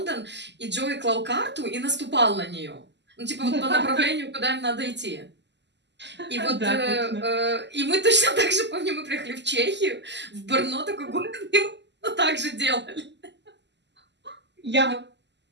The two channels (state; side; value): late; left; 0.51 ms